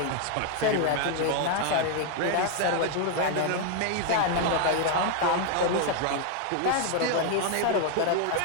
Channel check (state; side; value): different; both; correlation 0.00